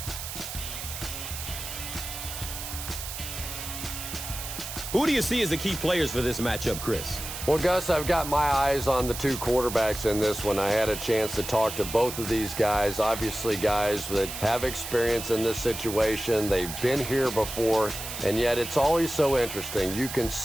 Who do you see as the key players for this matchup, Chris? Well, Gus, I've got my eyes on the two quarterbacks in this one. I had a chance to talk to both of these guys, obviously guys that have experience in this situation. They've been here before, and yet it's always so interesting. You can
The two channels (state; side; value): noise; right; hiss, 8 dB below the sound